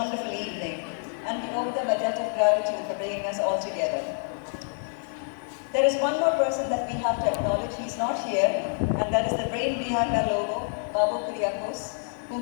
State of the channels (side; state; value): right; silent; 60 dB below the other